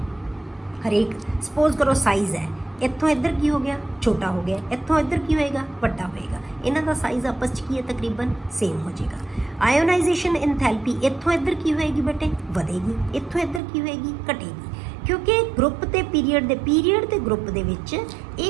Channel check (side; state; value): left; drops out; at 13.6 s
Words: ਹਰੇਕ ਸਪੋਜ਼ ਕਰੋ ਸਾਈਜ਼ ਹੈ, ਇੱਥੋਂ ਇੱਧਰ ਕੀ ਹੋ ਗਿਆ, ਛੋਟਾ ਹੋ ਗਿਆ, ਇੱਥੋਂ ਇੱਧਰ ਕੀ ਹੋਏਗਾ, ਵੱਡਾ ਹੋਏਗਾ। ਇਹਨਾਂ ਦਾ ਸਾਈਜ਼ ਆਪਸ 'ਚ ਕੀ ਹੈ, ਤਕਰੀਬਨ ਸੇਮ ਹੋ ਜਾਏਗਾ। ਆਇਓਨਾਈਜੇਸ਼ਨ ਇਨਥੈਲਪੀ ਇੱਥੋਂ ਇੱਧਰ ਕੀ ਹੋਏਗੀ ਬੇਟੇ, ਵਧੇਗੀ, ਇੱਥੋਂ ਇੱਧਰ ਕੀ ਹੋਏਗੀ, ਘਟੇਗੀ। ਕਿਉਂਕਿ ਗਰੁੱਪ ਤੇ ਪੀਰੀਅਡ ਤੇ ਗਰੁੱਪ ਦੇ ਵਿੱਚ